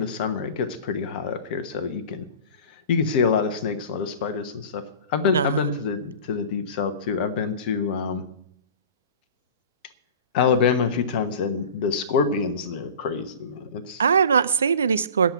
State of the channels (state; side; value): inverted; both; correlation -0.39